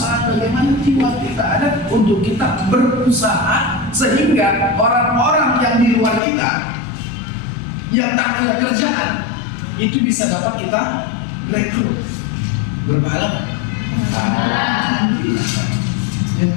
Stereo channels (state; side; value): drops out; right; at 6.2 s